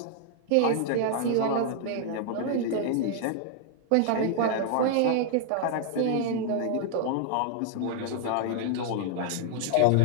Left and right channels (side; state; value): both; different; correlation 0.00